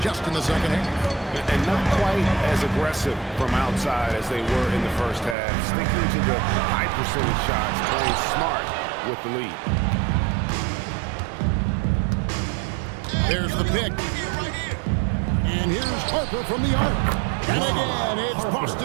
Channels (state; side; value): drops out; left; at 5.4 s